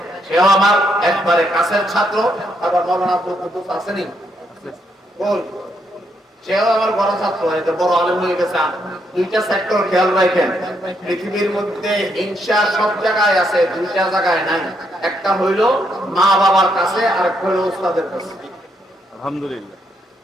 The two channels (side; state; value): both; normal; correlation 0.76